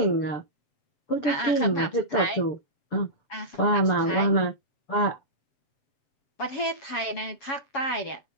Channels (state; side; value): late; right; 7.3 ms